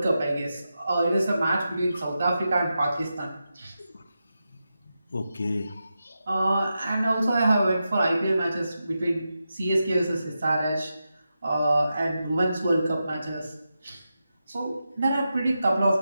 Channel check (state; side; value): inverted; both; correlation -0.89